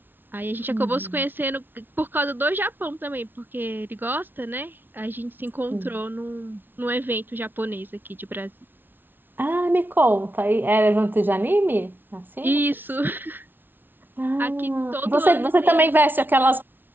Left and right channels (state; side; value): late; left; 0.096 ms